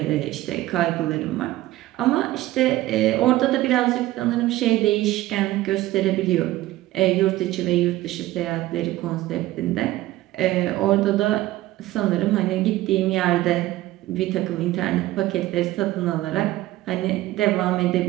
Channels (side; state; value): left; quieter; 16.2 dB